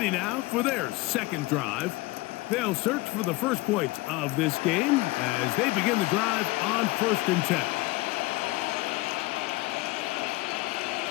now for their second drive. They'll search for the first points of this game as they begin the drive on 1st and 10.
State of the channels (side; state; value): right; quieter; 21.3 dB